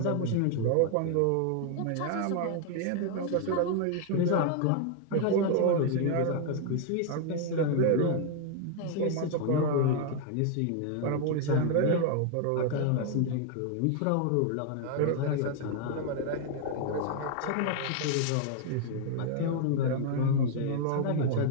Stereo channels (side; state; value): both; different; correlation 0.00